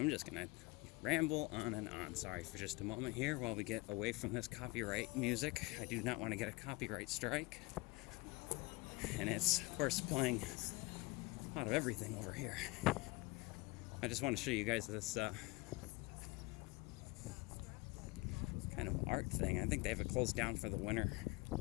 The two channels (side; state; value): right; quieter; 23.5 dB